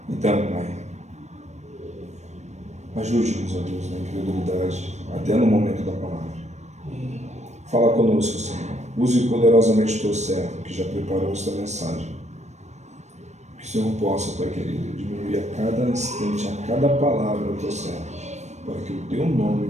Então, Pai, ajude-nos, ó Deus, na incredulidade, até no momento da palavra. Fala conosco, Senhor. Use poderosamente o Teu servo, que já preparou esta mensagem. Que o Senhor possa, Pai querido, diminuir a cada instante, a cada palavra do Teu servo, para que o Teu nome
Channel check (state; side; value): late; left; 0.33 ms